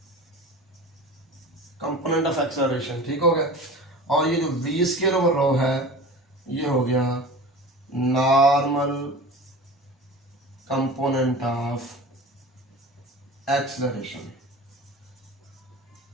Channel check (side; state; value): both; normal; correlation 0.36